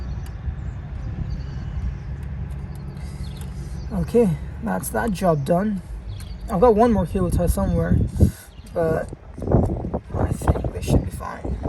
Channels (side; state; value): both; identical; correlation 1.00